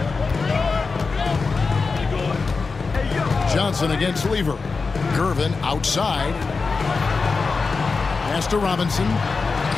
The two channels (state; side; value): quieter; right; 4.4 dB